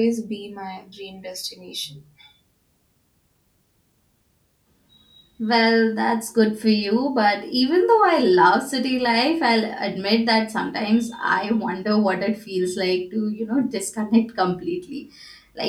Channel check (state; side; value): identical; both; correlation 1.00